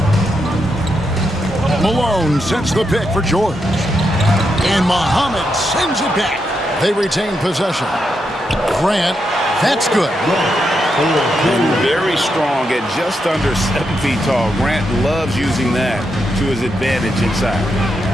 Malone sets the pick for George. And Muhammad sends it back. They retain possession. Grant, that's good. Very strong at just under 7 feet tall. Grant loves using that to his advantage inside.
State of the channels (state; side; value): normal; both; correlation 0.83